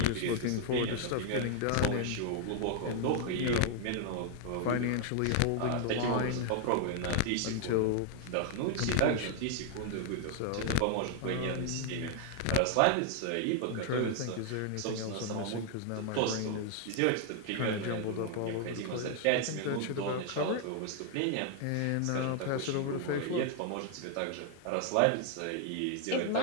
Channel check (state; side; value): different; both; correlation 0.00